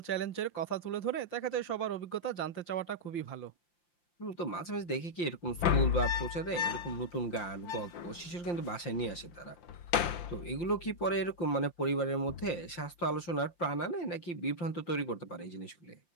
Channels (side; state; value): right; late; 5.8 ms